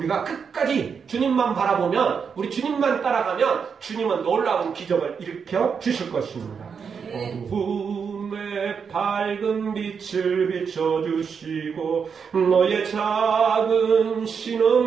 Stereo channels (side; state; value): left; quieter; 6.3 dB